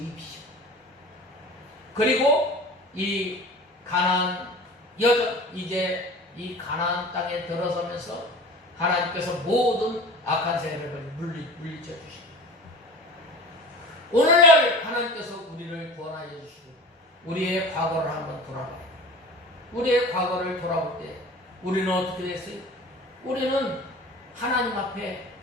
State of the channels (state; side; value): normal; both; correlation 0.38